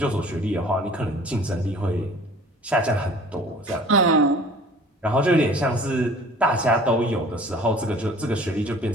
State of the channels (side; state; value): both; normal; correlation 0.48